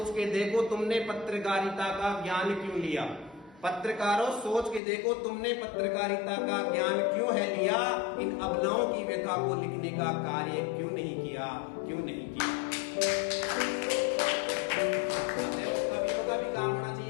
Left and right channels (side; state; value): right; drops out; at 4.8 s